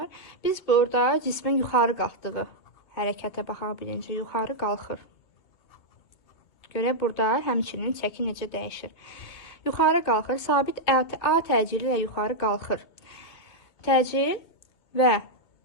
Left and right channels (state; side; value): late; right; 2.8 ms